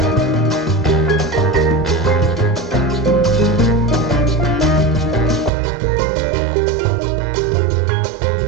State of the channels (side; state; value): left; drops out; at 5.5 s